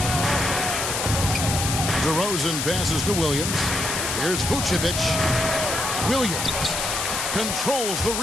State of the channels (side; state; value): left; noise; hiss, 2 dB below the sound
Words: DeRozan passes to Williams. Here's Vucevic. Williams controls the